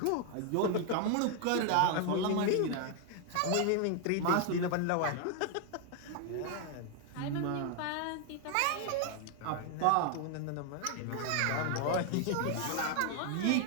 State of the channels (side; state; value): both; different; correlation 0.00